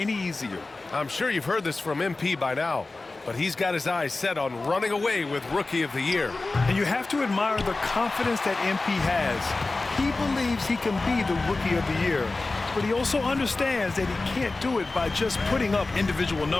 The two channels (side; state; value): right; quieter; 3.4 dB